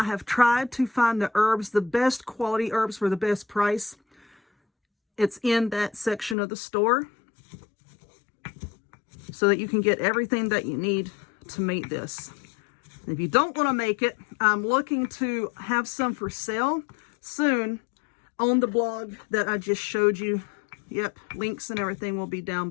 have tried to find the herbs, the best quality herbs for the best price. It's in that section of the store so that you can get everything that you need to make this. If you don't want to make it, I'm looking to have some for sale soon on the blog that I just showed you. Yep, links and everything will be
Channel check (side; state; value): right; drops out; at 6.4 s